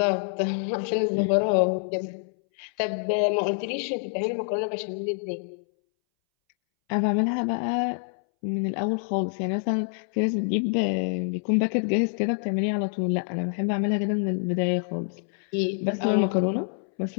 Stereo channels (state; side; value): silent; right; 61 dB below the other